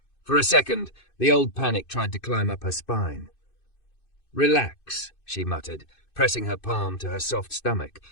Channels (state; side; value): late; right; 2.6 ms